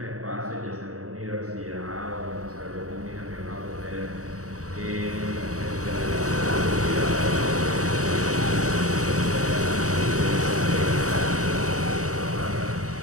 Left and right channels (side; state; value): left; late; 0.66 ms